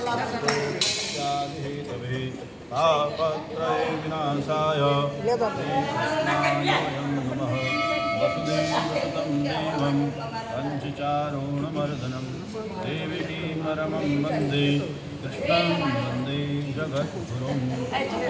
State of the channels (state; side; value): identical; both; correlation 1.00